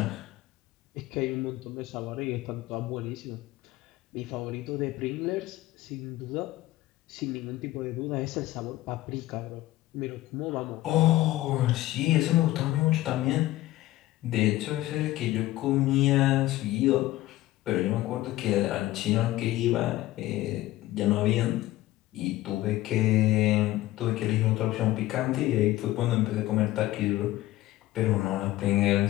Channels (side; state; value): right; quieter; 16.4 dB